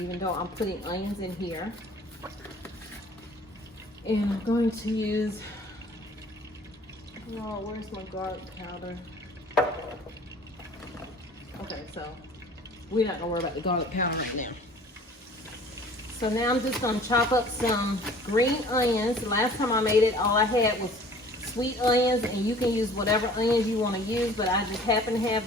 though I'm putting onions in here. And I'm going to use, oh, where's my garlic powder? Okay, so we're not gonna worry about the garlic powder right now. So now I'm just gonna chop up some green onions. The last time I made it, all I had was sweet onions, and you can use whatever onions you want to use, but I just happen to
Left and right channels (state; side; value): normal; both; correlation 0.49